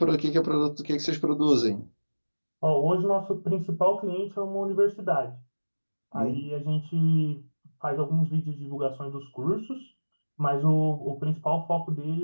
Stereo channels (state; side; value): inverted; both; correlation -1.00